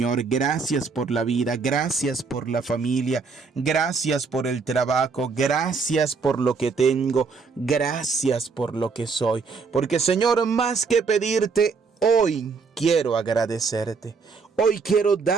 Gracias por la vida, gracias por la familia, gracias por el trabajo, gracias por lo que tengo, gracias por lo que soy. Porque, Señor, más que pedirte, hoy quiero agradecerte. Hoy quiero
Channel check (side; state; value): left; quieter; 4.9 dB